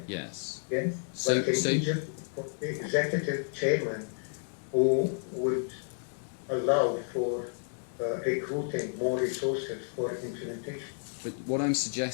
Yes. yes. So, But in Egypt, the executive chairman who would allow for recruiting more resources for implementation. but what I'm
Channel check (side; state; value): right; silent; digital silence